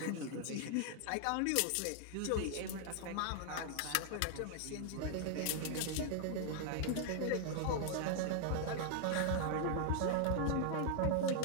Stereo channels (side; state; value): both; different; correlation 0.00